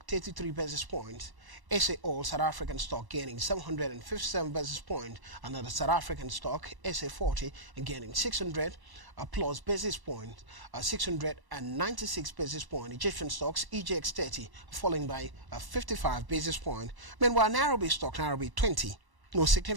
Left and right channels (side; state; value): left; late; 1.1 ms